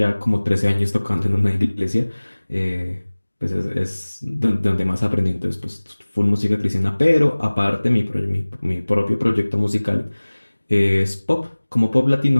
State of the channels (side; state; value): both; inverted; correlation -1.00